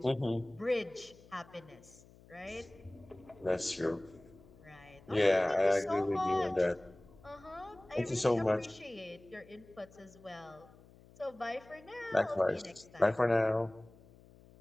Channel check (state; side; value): noise; left; hum, 24 dB below the sound